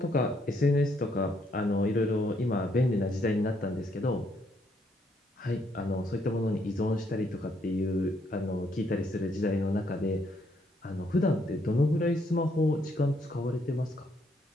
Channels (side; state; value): both; normal; correlation 0.72